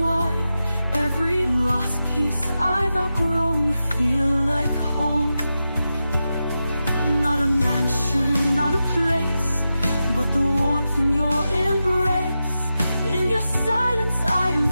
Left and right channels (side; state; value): both; inverted; correlation -0.91